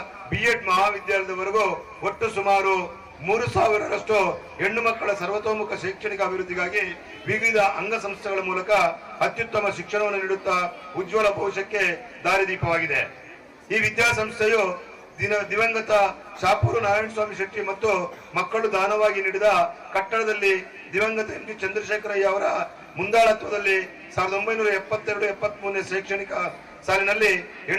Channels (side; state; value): both; identical; correlation 1.00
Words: BEd ಮಹಾವಿದ್ಯಾಲಯದವರೆಗೂ ಒಟ್ಟು ಸುಮಾರು 3,000ರಷ್ಟು ಹೆಣ್ಣು ಮಕ್ಕಳ ಸರ್ವತೋಮುಖ ಶೈಕ್ಷಣಿಕ ಅಭಿವೃದ್ಧಿಗಾಗಿ ವಿವಿಧ ಅಂಗಸಂಸ್ಥೆಗಳ ಮೂಲಕ ಅತ್ಯುತ್ತಮ ಶಿಕ್ಷಣವನ್ನು ನೀಡುತ್ತಾ ಉಜ್ವಲ ಭವಿಷ್ಯಕ್ಕೆ ದಾರಿದೀಪವಾಗಿದೆ. ಈ ವಿದ್ಯಾಸಂಸ್ಥೆಯು ದಿವಂಗತ ಶಾಪೂರು ನಾರಾಯಣಸ್ವಾಮಿ ಶೆಟ್ಟಿ ಮತ್ತು ಮಕ್ಕಳು ದಾನವಾಗಿ ನೀಡಿದ ಕಟ್ಟಡದಲ್ಲಿ ದಿವಂಗತ MG ಚಂದ್ರಶೇಖರಯ್ಯ ಅವರ ಮುಂದಾಳತ್ವದಲ್ಲಿ 1972-73ನೇ ಶೈಕ್ಷಣಿಕ ಸಾಲಿನಲ್ಲಿ